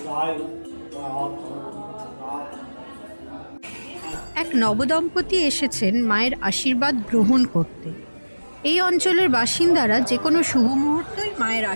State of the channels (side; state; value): both; inverted; correlation -1.00